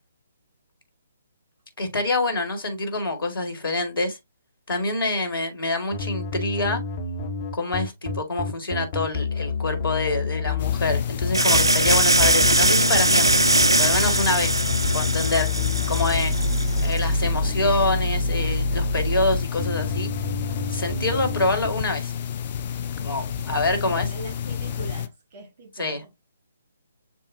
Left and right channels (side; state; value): both; inverted; correlation -0.47